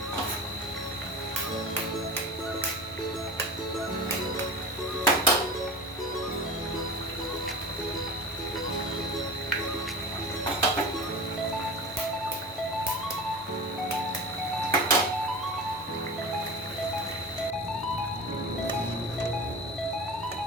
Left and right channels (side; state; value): both; normal; correlation 0.31